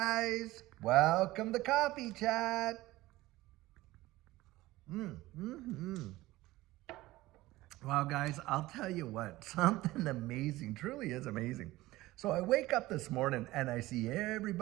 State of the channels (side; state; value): left; quieter; 17.9 dB